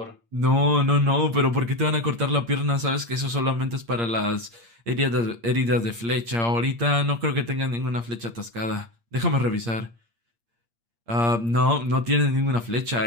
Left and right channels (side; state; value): left; late; 8.6 ms